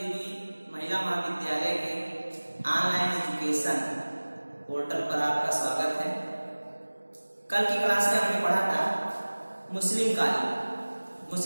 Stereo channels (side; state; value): both; inverted; correlation -1.00